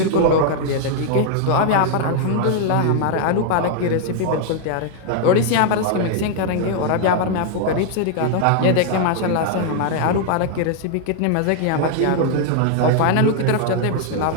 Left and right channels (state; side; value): different; both; correlation 0.00